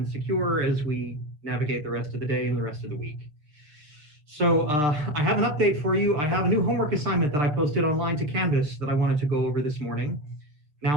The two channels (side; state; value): left; late; 6.6 ms